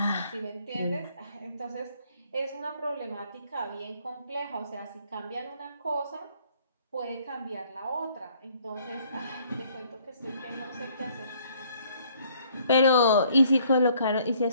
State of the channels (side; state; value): both; inverted; correlation -0.62